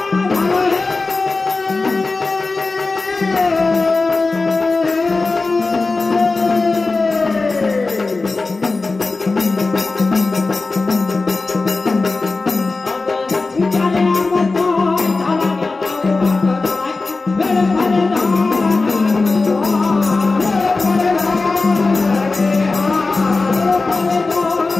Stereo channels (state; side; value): quieter; right; 3.7 dB